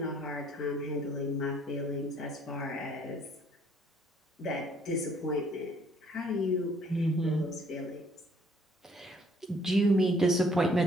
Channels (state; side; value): normal; both; correlation 0.62